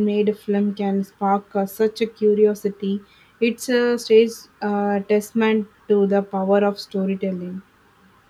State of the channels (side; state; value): both; identical; correlation 1.00